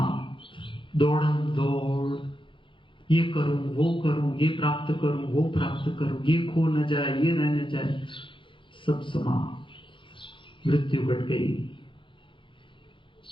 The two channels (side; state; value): right; late; 0.24 ms